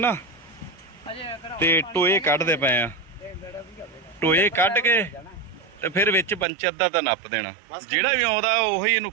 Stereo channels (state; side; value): drops out; left; at 6.5 s